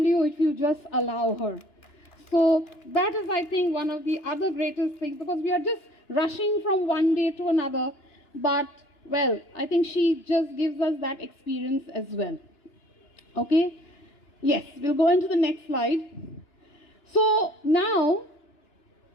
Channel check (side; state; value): right; late; 2.9 ms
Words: you if you just allow her. So that is, I think, one of the other greatest things, because we are just rushing from one day to another. But, well, I think she just gives us that experience as well. Okay? Yes, we'll go into the next slide. So now,